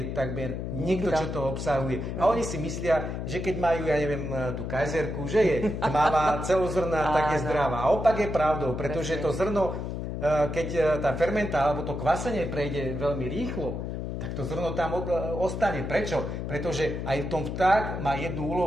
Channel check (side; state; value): left; noise; hum, 4 dB below the sound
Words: takmer nikto, čo to obsahuje. A oni si myslia, že keď majú, ja neviem, tú kajzerku, že je tmavá, celozrná, tak je zdravá. A opak je pravdou, pretože to zrno, keď tá fermenta alebo to kvasenie prejde veľmi rýchlo, tak to zrno tam ostane. Prečo? Pretože aj v tom vták má jednu